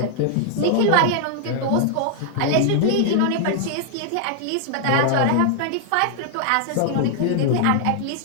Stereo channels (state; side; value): different; both; correlation 0.00